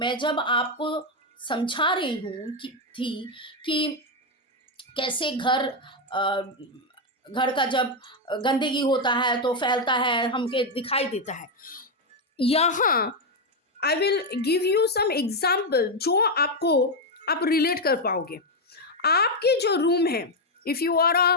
जब आपको समझा रही हूँ कि कैसे घर का जब गंदगी होता है तो फैलता है, हमके दिखाई देता है। यहाँ I will give you some example जो आप रिलेट कर पाओगे। आपके जो रूम है, if you are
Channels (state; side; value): normal; both; correlation 0.04